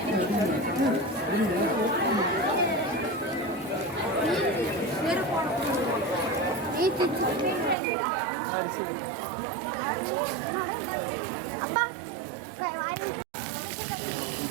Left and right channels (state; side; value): drops out; left; at 7.8 s